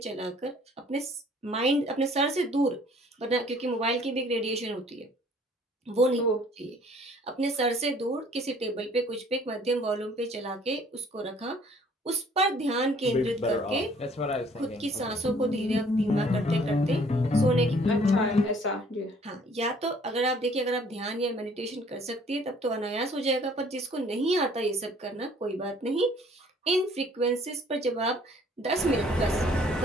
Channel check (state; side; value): normal; both; correlation 0.57